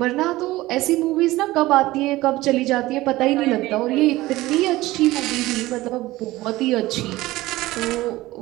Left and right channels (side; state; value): left; quieter; 18.1 dB